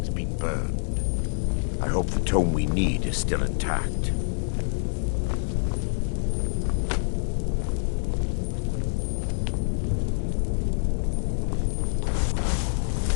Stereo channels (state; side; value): silent; right; digital silence